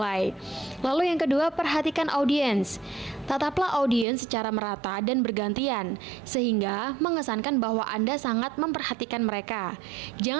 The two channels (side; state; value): left; drops out; at 4.0 s